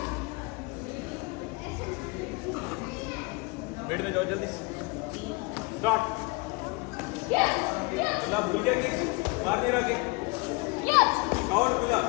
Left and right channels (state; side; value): quieter; right; 27.5 dB